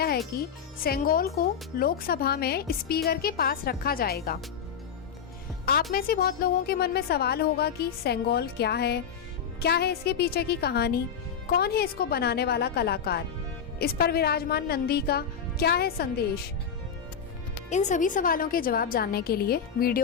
है कि सेंगोल को लोकसभा में स्पीकर के पास रखा जाएगा। आप में से बहुत लोगों के मन में सवाल होगा कि सेंगोल क्या है इसके पीछे की कहानी, कौन है इसको बनाने वाला कलाकार, इस पर विराजमान नंदी का क्या है संदेश। इन सभी सवालों के जवाब जानने के लिए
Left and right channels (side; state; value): right; quieter; 7.2 dB